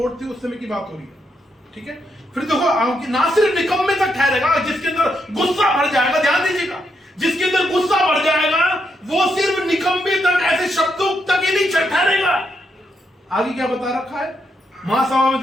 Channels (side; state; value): both; normal; correlation 0.80